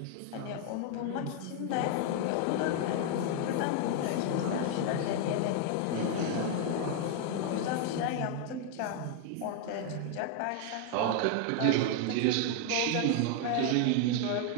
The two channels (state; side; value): different; both; correlation 0.00